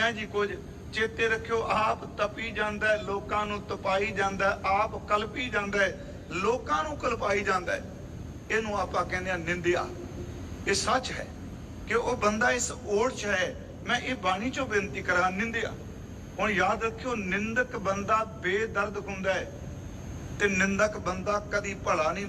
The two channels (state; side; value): identical; both; correlation 1.00